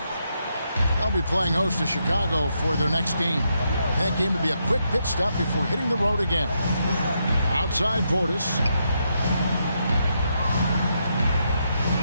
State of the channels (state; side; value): inverted; both; correlation -0.80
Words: They'll be playing host to Chicago for their next game. That game will be a quick pit stop before hitting the road again. Outside Portis.